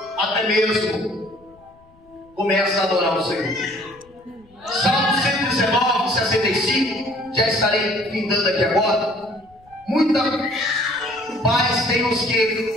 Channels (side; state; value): left; noise; rumble, 29 dB below the sound